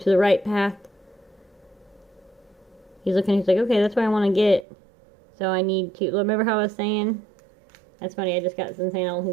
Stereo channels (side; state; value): left; drops out; at 4.7 s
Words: the right path. He's looking, he's like, okay, that's what I want to get. So I need to, remember how I was saying? That's funny, I just got some saying, I don't